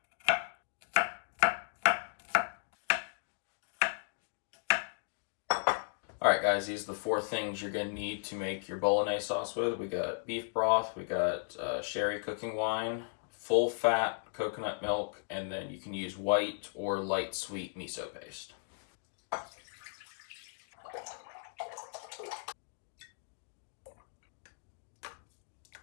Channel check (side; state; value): right; silent; digital silence